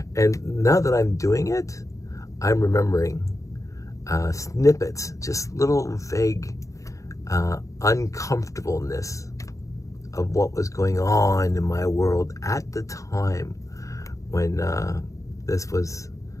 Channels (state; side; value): late; right; 0.16 ms